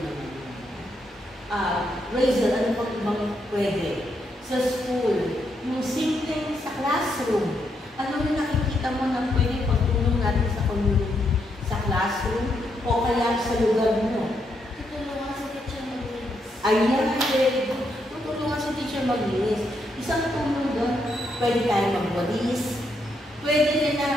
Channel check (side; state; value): both; normal; correlation 0.78